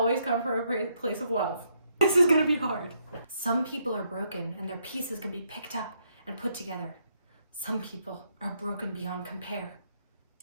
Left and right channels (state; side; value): inverted; both; correlation -0.75